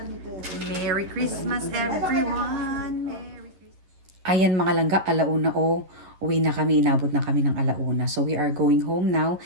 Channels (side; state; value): left; late; 11 ms